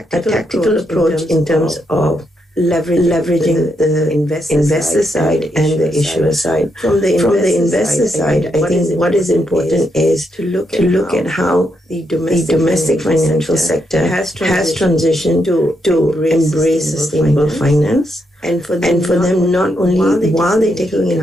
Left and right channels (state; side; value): normal; both; correlation 0.80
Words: approach in terms of leveraging the investor side and the issuer side. From the investor side, I think what is important is to look at how the domestic financial sector has transitioned to embrace sustainable finance. And for them, not only while they're taking